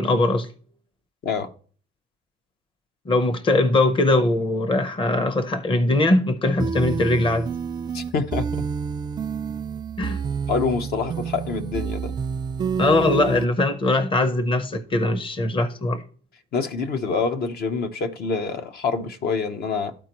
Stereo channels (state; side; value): normal; both; correlation 0.59